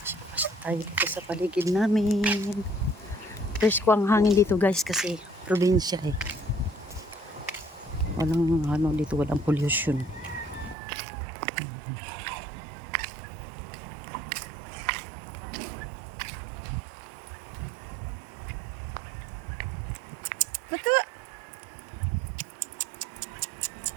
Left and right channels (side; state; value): left; drops out; at 10.8 s